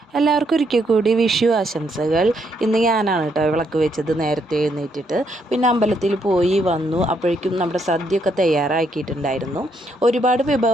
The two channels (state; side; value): normal; both; correlation 0.74